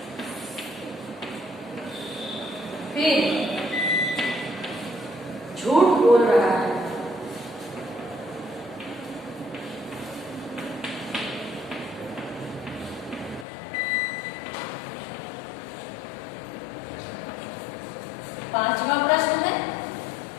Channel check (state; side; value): drops out; right; at 13.5 s